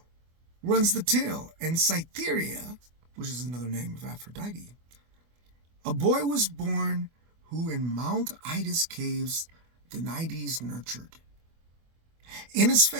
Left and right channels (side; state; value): left; late; 24 ms